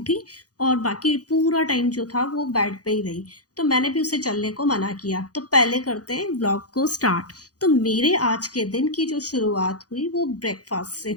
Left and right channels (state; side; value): late; right; 0.67 ms